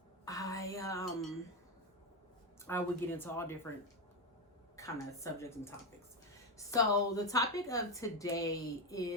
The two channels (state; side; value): normal; both; correlation 0.10